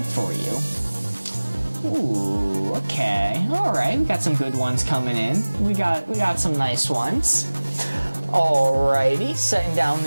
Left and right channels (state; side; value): inverted; both; correlation -1.00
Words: for you. Ooh, okay. Alright, we got some good ones coming in. We got some nice ones. Alrighty, setting down